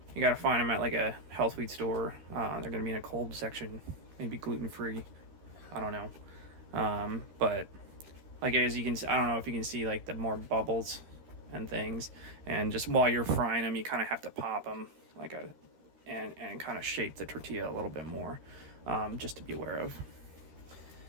You gotta find them at like a health food store. They're gonna be in a cold section, maybe gluten-free. I don't know. But like as you can see, I don't know if you can see like the more bubbles and things. And just while you're frying them, you kind of have to pop them like and kind of shape the tortilla a little bit more, just to be aware of.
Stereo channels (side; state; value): left; late; 13 ms